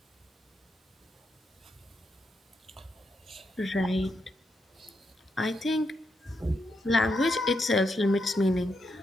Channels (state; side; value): normal; both; correlation 0.82